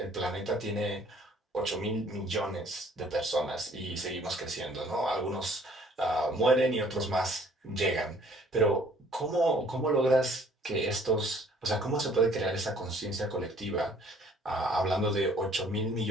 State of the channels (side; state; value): both; normal; correlation 0.58